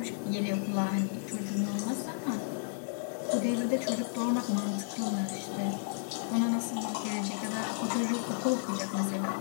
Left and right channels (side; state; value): right; silent; digital silence